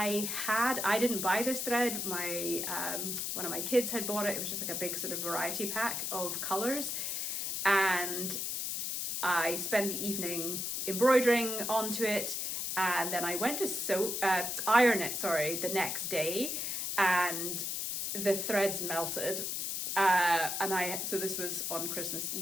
had. I didn't buy this thread. My one of my kids had bought it. It was just like a big sort of variety pack of colors, and I spent the evening embroidering onto it. And then I went to iron it, the next day, and the threads melted. So this was on Christmas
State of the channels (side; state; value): left; noise; hiss, 2 dB below the sound